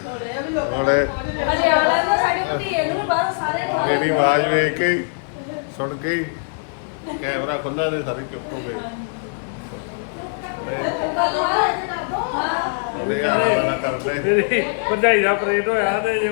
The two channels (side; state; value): right; silent; 56 dB below the other